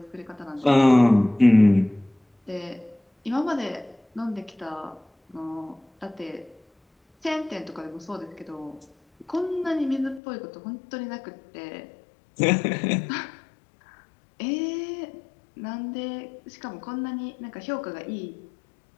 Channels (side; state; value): right; drops out; at 10.2 s